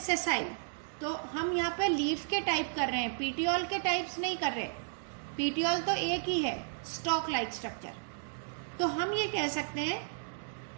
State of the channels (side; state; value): left; silent; digital silence